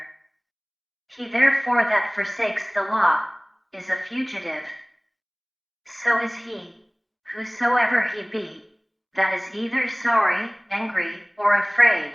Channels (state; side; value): identical; both; correlation 1.00